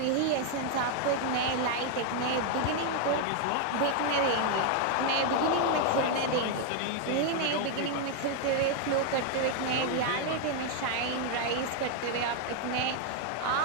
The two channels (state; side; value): different; both; correlation 0.00